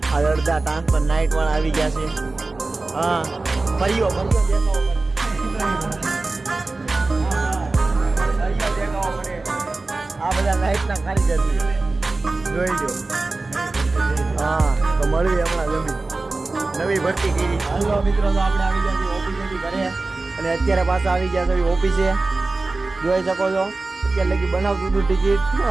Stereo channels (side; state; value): left; quieter; 3.4 dB